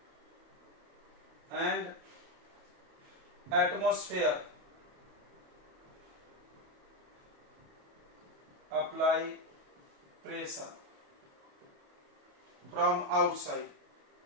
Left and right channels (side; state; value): left; late; 28 ms